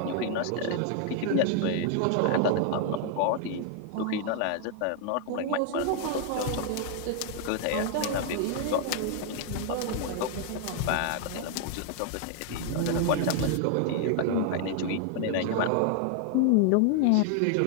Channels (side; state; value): both; different; correlation 0.00